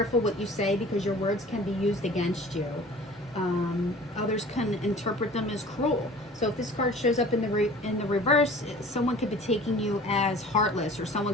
what you say because your words can be used against you. Others can interpret them as cruel. So if this card shows up in the reverse, someone could be taking you as heartless, or someone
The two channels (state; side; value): normal; both; correlation 0.45